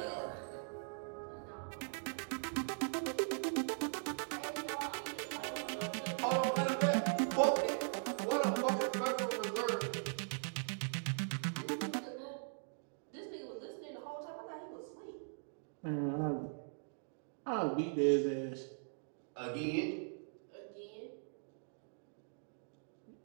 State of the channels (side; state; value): left; silent; digital silence